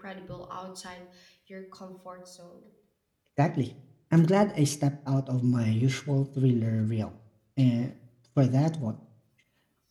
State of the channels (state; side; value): identical; both; correlation 1.00